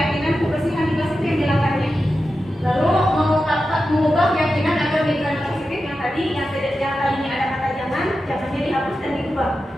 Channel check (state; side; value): normal; both; correlation 0.91